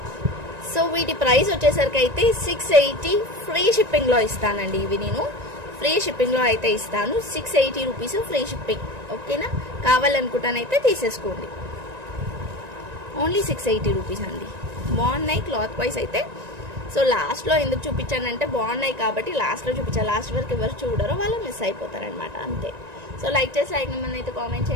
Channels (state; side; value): late; left; 1.9 ms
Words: సో వీటి ప్రైస్ వచ్చేసరికి అయితే 680 ఫ్రీ షిప్పింగ్లో ఇస్తానండి. ఇవి నేను ఫ్రీ షిప్పింగ్లో అయితే ఇస్తాను. 680 రూపీస్ ఫ్రీ షిప్పింగ్. ఓకేనా, కావాలనుకుంటానైతే తీసేసుకోండి. ఓన్లీ 680 రూపీస్ అండి. బాగున్నాయి క్లాత్ వైజ్ అయితే. సో లాస్ట్లో ఎందుకు చూపించానంటే బాగున్నాయి కాబట్టి లాస్ట్లో చూపించాను. లాస్ట్ వరకు ఎవరు చూడరో వాళ్ళు మిస్ అయిపోతారనమాట, అంతే. సో లైక్ చేసి నెంబర్ అయితే కామెంట్